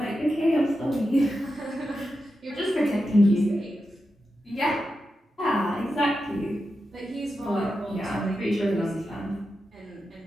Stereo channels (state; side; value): normal; both; correlation 0.89